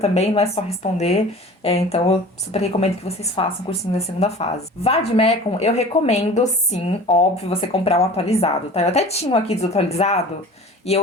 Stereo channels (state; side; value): normal; both; correlation 0.41